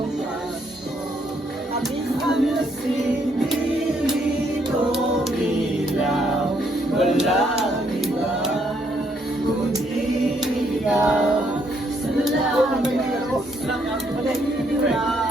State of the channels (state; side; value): normal; both; correlation 0.71